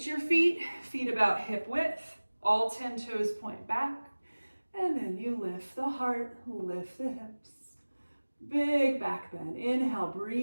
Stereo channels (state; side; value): inverted; both; correlation -1.00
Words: your feet about hip width. All 10 toes point back. And then you lift the heart, lift the hips. Big back bend. Inhale,